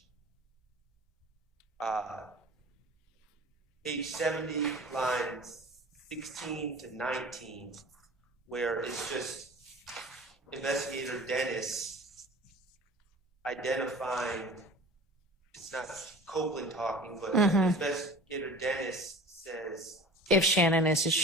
70, lines 16 to 19, where it's just Investigator Dennis identifying, it's not Copeland talking, but Investigator Dennis says, If Shannon is a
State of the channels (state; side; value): normal; both; correlation 0.40